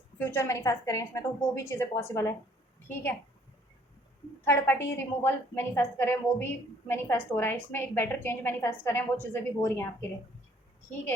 फ्यूचर मैनिफेस्ट करें, इसमें तो वो भी चीज़ें पॉसिबल है, ठीक है। थर्ड पार्टी रिमूवल मैनिफेस्ट करें, वो भी मैनिफेस्ट हो रहा है इसमें। एक बेटर चेंज मैनिफेस्ट करें, वो चीज़ें भी हो रही हैं आपके लिए, ठीक है।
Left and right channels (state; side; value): normal; both; correlation 0.61